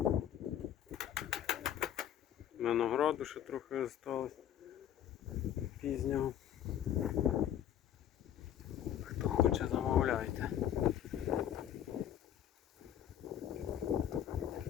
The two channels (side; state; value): right; quieter; 10.6 dB